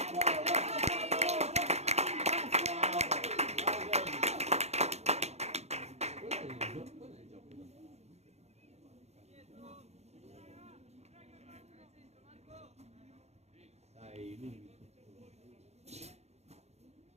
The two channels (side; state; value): left; late; 0.31 ms